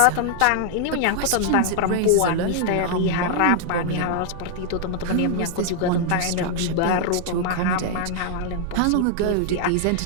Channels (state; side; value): different; both; correlation -0.01